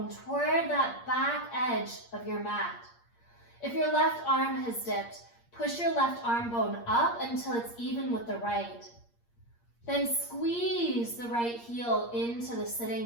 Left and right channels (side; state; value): right; late; 8.6 ms